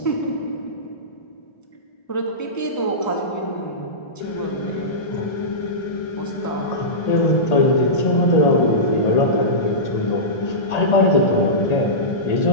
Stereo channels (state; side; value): late; right; 1.8 ms